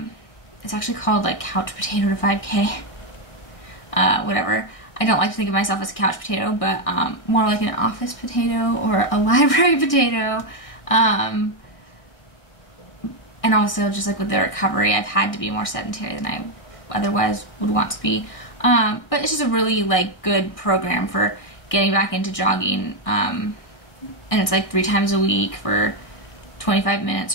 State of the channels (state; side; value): late; right; 1.6 ms